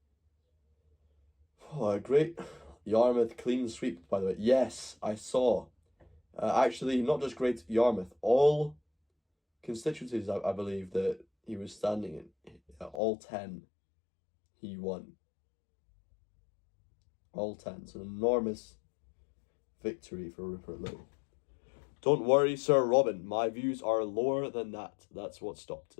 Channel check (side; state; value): right; drops out; at 13.0 s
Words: Oh, a great Yarmouth clean sweep, by the way. Yes, I saw. Actually, not just Great Yarmouth, all constituencies, I believe, that he was standing in, all 10, he won. All 10. It's an enormous victory for Rupert Lowe. Don't worry, Sir Robin. My views are lower than that. That's what stopped